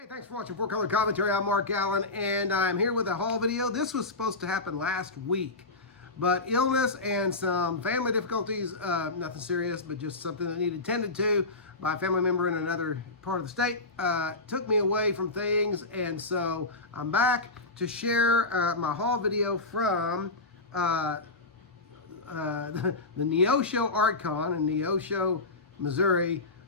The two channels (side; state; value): right; quieter; 3.2 dB